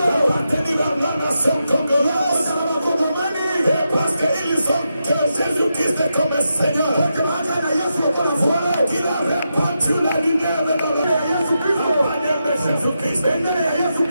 à la nation congolaise. Et parce qu'ils ont que Jésus-Christ est comme Seigneur. Voilà qu'il a répandu la lumière dans la manière de Jésus-Christ.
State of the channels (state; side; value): inverted; both; correlation -0.86